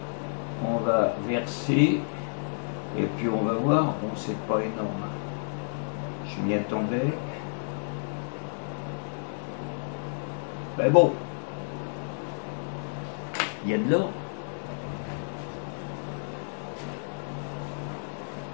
on va verser et puis on va voir. Bon, c'est pas énorme. Je m'y attendais. Ben bon, il y a de l'or.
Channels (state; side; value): silent; right; digital silence